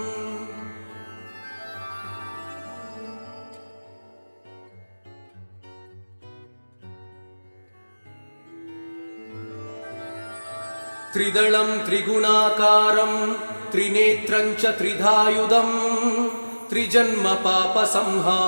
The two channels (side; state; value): both; inverted; correlation -1.00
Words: त्रिदलं त्रिगुणाकारं त्रिनेत्रं च त्रिधायुधं